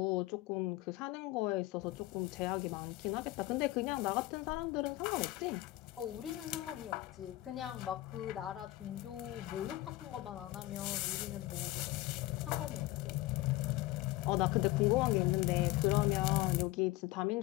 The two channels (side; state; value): right; quieter; 17.8 dB